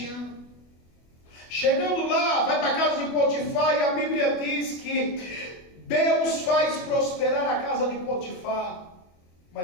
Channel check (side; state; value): right; late; 24 ms